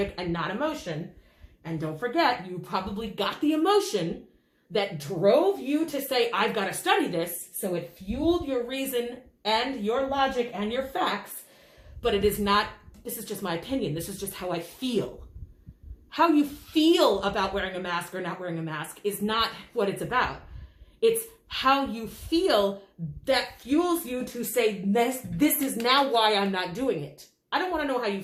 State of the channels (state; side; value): identical; both; correlation 1.00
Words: and not emotion. And don't forget, you probably got the emotion that drove you to say, I've got to study this. So it fueled your reason and your logic and your facts, but it is not, this is just my opinion. This is just how I feel. How you feel about wearing a mask or not wearing a mask is not what it's about. It's how you feel that fuels you to say, this is now why I'm not doing it. I don't want to know how you